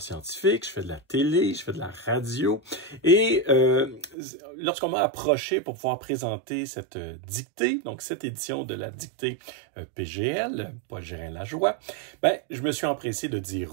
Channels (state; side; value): drops out; left; at 4.2 s